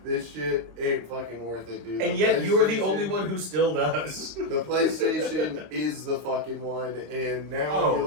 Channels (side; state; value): left; late; 26 ms